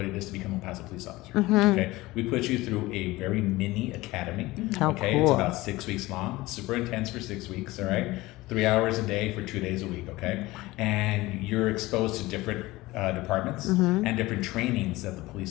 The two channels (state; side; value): quieter; right; 19.5 dB